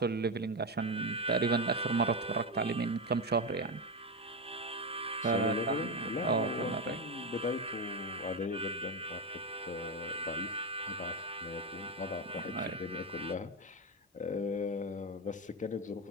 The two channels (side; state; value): both; normal; correlation 0.11